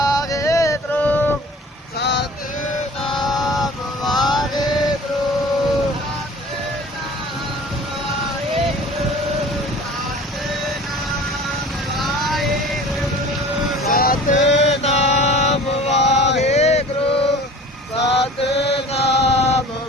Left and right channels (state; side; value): normal; both; correlation 0.44